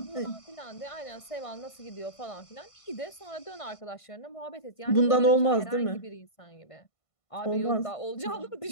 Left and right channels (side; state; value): right; late; 1.5 ms